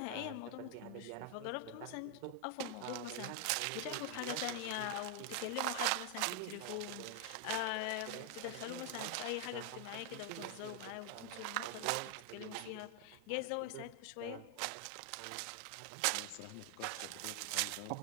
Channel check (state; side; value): different; both; correlation 0.00